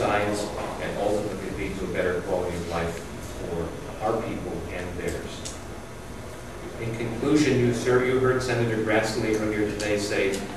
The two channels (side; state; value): both; identical; correlation 1.00